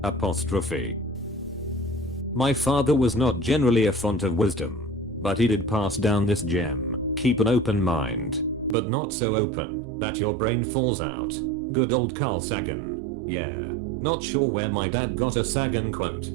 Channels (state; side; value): drops out; left; at 8.8 s